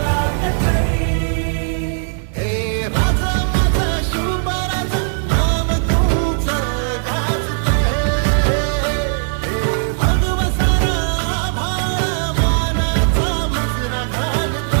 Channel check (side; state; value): left; silent; digital silence